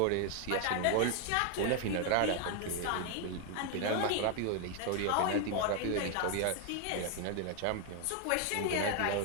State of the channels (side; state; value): both; different; correlation 0.00